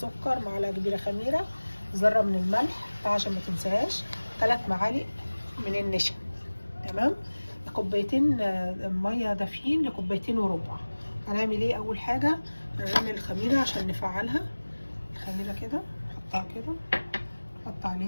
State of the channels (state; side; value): inverted; both; correlation -1.00